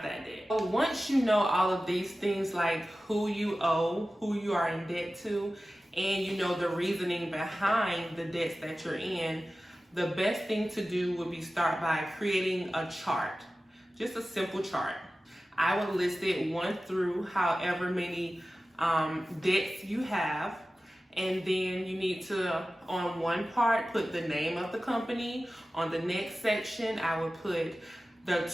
that debt. So once you know all of these things, like who you owe, who you are in debt to, and you know the reasoning behind the debts that you're in, the best thing to do would be start by creating a chart, just a simple chart. I would list it 1 through however many debts you have, and then you need to, on one part, put the name of the company. On the next section, I would put the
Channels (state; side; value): normal; both; correlation 0.95